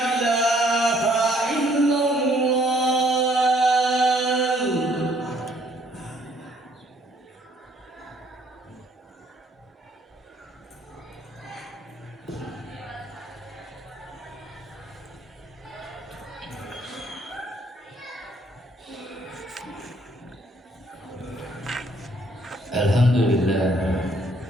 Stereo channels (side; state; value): both; normal; correlation 0.64